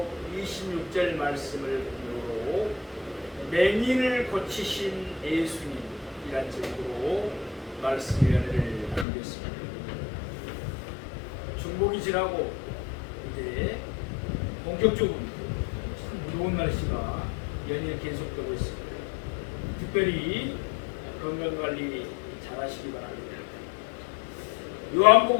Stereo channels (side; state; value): right; drops out; at 9.1 s